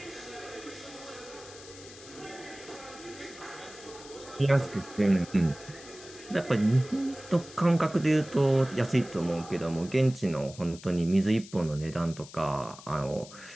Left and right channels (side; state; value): left; noise; hiss, 18 dB below the sound